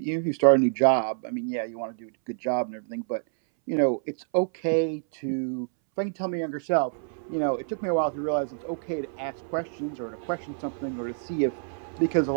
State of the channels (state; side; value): silent; left; 60 dB below the other